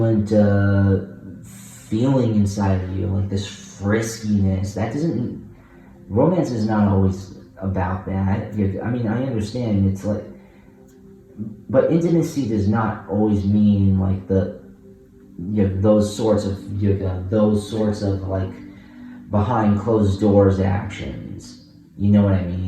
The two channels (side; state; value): both; identical; correlation 1.00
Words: feeling inside of you, like this friskiness. Romance is not always about that. I mean, I understand it's like, but intimacy does not always mean like those sorts of like behind closed doors actions. You know what I